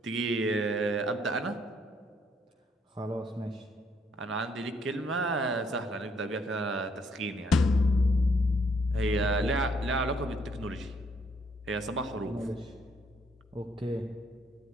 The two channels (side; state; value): both; normal; correlation 0.69